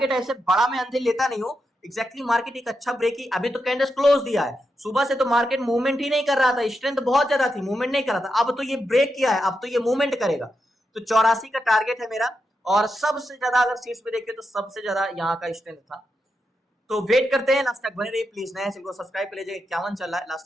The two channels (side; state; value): both; normal; correlation 0.86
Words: ऐसे बड़ा मैं अंदर लेता नहीं हूँ, एग्जैक्टली मार्केट एक अच्छा ब्रेक ही, अभी तो कैंडल्स क्लोज दिया है, सुबह से तो मार्केट मूवमेंट ही नहीं कर रहा था, स्ट्रेंथ बहुत ज्यादा थी, मूवमेंट नहीं कर रहा था, अब तो ये ब्रेक किया है, अब तो ये मूवमेंट करेगा। तो 84 का टारगेट है मेरा, और सबसे ज्यादा अगर सीट्स पे देखें तो सबसे ज्यादा यहाँ का स्ट्रेंथ था तो वेट करते हैं, लास्ट तक बने रहिए प्लीज। नया चैनल को सब्सक्राइब कर लीजिएगा, 51 चल रहा है, लास्ट